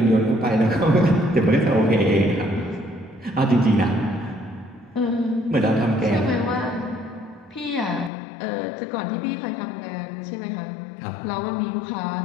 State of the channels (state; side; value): drops out; right; at 8.1 s